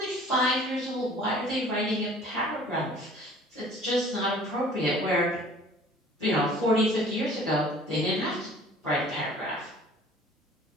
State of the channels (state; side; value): normal; both; correlation 0.50